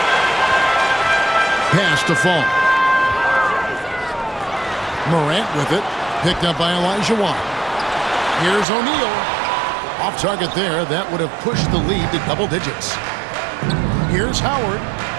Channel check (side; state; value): left; drops out; at 8.7 s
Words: Pass to Fall. Morant with it. Picked up by Olajuwon. Here's O'Neal. Off target there. That would have pushed the lead to double digits. Here's Howard.